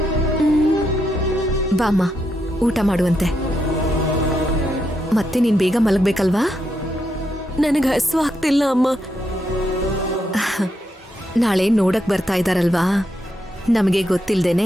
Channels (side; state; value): both; normal; correlation 0.81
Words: ಬಾಮ್ಮ, ಊಟ ಮಾಡುವಂತೆ. ಮತ್ತೆ ನೀನ್ ಬೇಗ ಮಲಗ್ಬೇಕಲ್ವಾ? ನನಗೆ ಹಸು ಆಗ್ತಿಲ್ಲ ಅಮ್ಮ. ನಾಳೆ ನೋಡಕ್ ಬರ್ತಾ ಇದ್ದಾರಲ್ವಾ, ನಮಗೆ